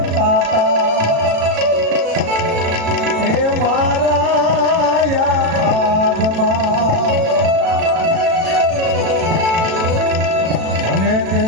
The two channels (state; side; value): late; left; 36 ms